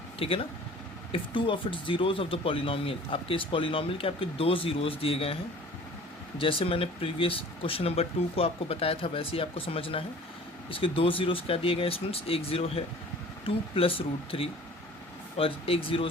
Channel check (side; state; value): both; normal; correlation 0.47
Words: ठीक है ना। If two of its zeros of the polynomial, आपके इस पॉलिनोमियल के आपके दो ज़ीरोज़ दिए गए हैं। जैसे मैंने प्रीवियस क्वेश्चन नंबर 2 को आपको बताया था वैसे ही आपको समझना है। इसके दो ज़ीरोज़ क्या दिए गए स्टूडेंट्स, एक ज़ीरो है 2 प्लस रूट 3 और एक